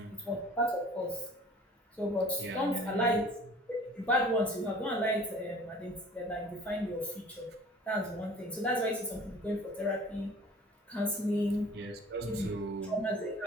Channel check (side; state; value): both; normal; correlation 0.47